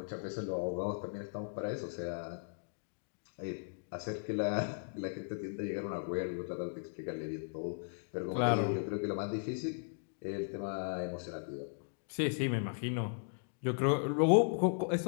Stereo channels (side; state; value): right; silent; digital silence